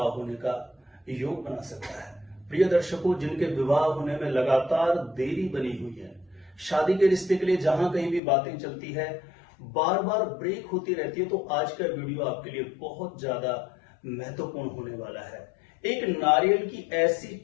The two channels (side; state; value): right; drops out; at 8.2 s